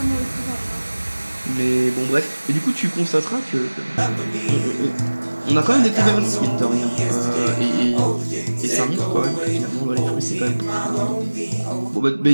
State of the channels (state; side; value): inverted; both; correlation -1.00